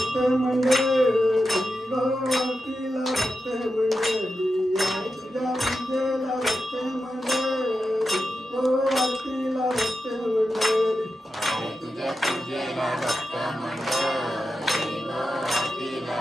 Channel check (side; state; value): both; normal; correlation 0.89